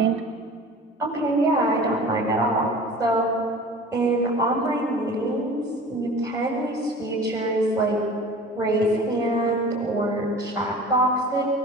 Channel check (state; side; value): normal; both; correlation 0.41